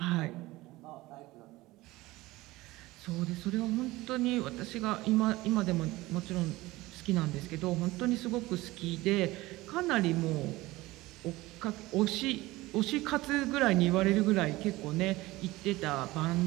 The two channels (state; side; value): quieter; left; 19.3 dB